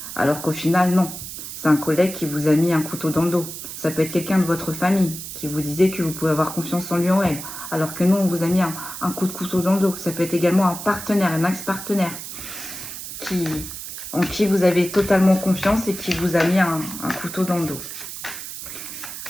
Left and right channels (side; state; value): right; noise; hiss, 9 dB below the sound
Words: Alors qu'au final, non. C'est un collègue qui vous a mis un couteau dans le dos. Ça peut être quelqu'un de votre famille qui vous disait que vous pouvez avoir confiance en lui ou en elle. Alors que nous, on vous a mis un coup de couteau dans le dos. Ça peut être également un partenaire, un ex-partenaire en qui vous avez totalement confiance et qui vous a mis un couteau dans le dos.